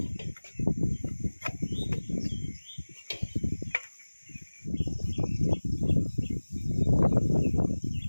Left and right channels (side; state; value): both; inverted; correlation -1.00